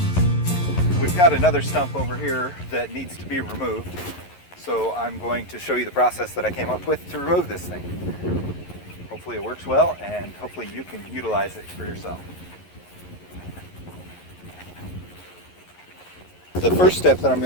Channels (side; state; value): right; late; 11 ms